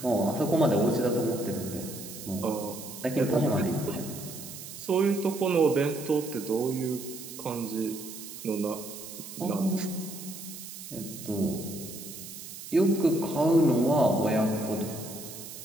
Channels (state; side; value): noise; right; hiss, 12 dB below the sound